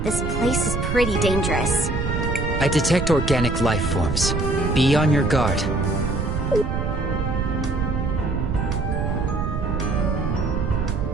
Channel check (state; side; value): noise; right; rumble, 1 dB below the sound